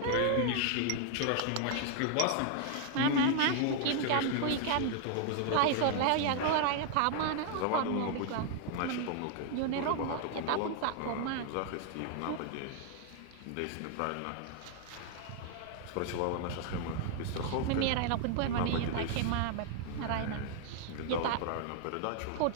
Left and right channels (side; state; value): both; different; correlation 0.00